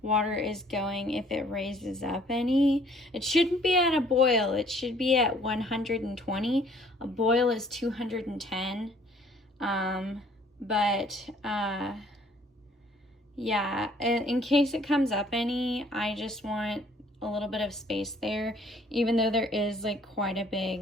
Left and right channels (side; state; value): both; normal; correlation 0.59